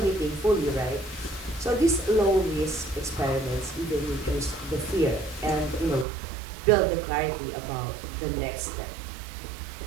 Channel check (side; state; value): left; drops out; at 6.1 s